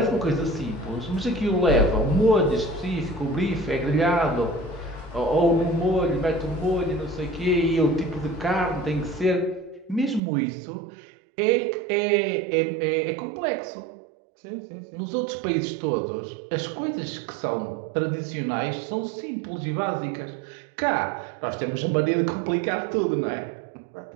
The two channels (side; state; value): left; drops out; at 10.2 s